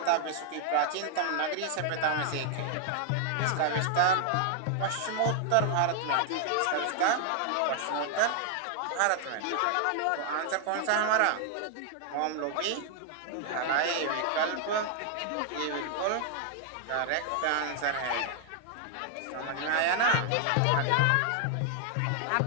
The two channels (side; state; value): both; different; correlation 0.00